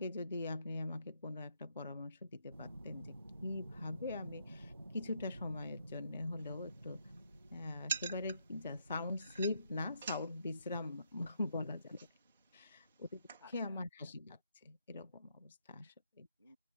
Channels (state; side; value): inverted; both; correlation -0.76